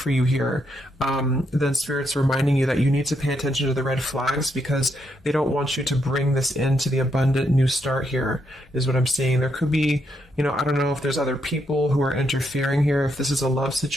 you here, then Spirit's reminding you that you need to pay attention to the red flags, because they don't want you to bring this into the abundant new start here, is what I'm saying. There could be, you know, I don't know if there's other people who are interfering here. If this is a love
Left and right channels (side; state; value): both; normal; correlation 0.78